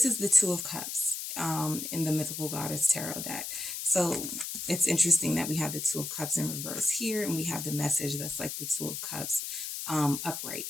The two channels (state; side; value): noise; left; hiss, 5 dB below the sound